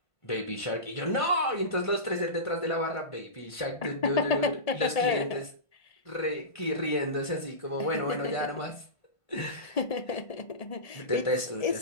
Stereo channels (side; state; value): right; late; 1.5 ms